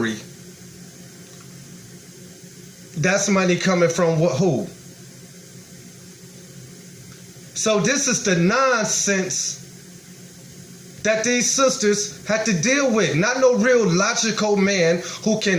that's money coming from who? So this is the nonsense that these sisters had to deal with. Not no real logical man who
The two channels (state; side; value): identical; both; correlation 1.00